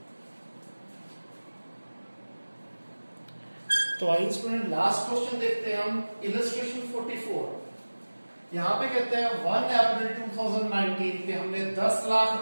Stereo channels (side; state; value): both; inverted; correlation -1.00